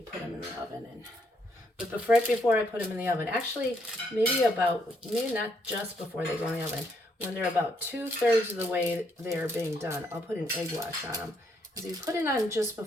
put them in the oven. But right before I put them in the oven, actually, maybe not just before they go in the oven, when they're about 2/3 of the way they're being done, I'll put an egg wash on them. Because if you put it on just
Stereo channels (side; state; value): both; normal; correlation 0.73